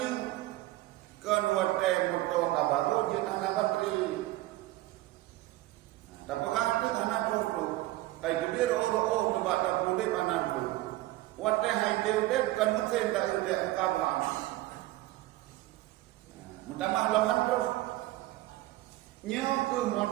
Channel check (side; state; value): left; quieter; 17.2 dB